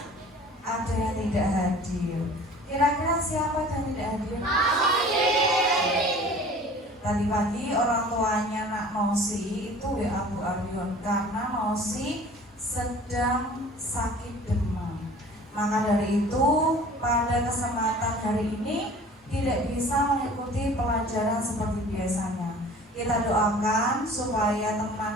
ada yang tidak hadir. Kira-kira siapa yang tidak hadir? Tadi pagi orang tuanya Nak Nosi itu WA Bu Aryon karena Nosi sedang sakit demam. Maka dari itu pada kesempatan hari ini tidak bisa mengikuti pelajaran seperti biasanya. Kita doakan supaya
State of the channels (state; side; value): normal; both; correlation 0.46